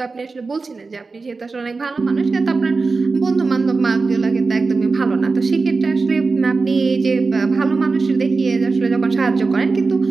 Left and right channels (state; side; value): quieter; left; 4.1 dB